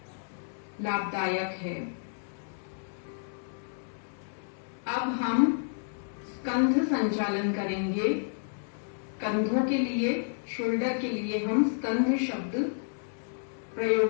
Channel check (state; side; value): silent; right; digital silence